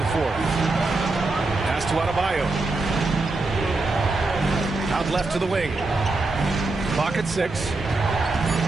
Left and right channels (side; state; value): left; quieter; 3.3 dB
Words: fourth. Pass to Adebayo. Out left to the wing. Clock at 6.